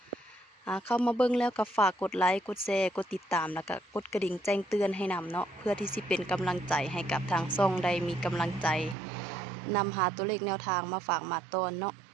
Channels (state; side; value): drops out; left; at 9.0 s